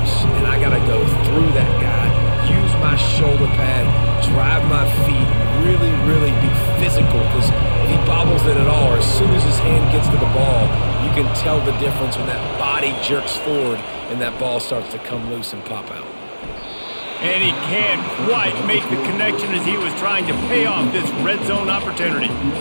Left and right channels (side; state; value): both; inverted; correlation -1.00